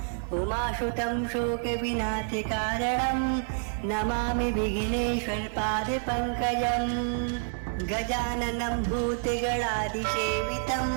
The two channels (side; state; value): left; silent; 59 dB below the other